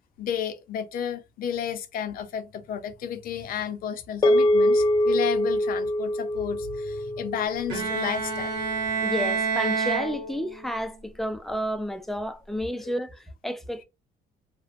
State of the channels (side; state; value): both; normal; correlation 0.58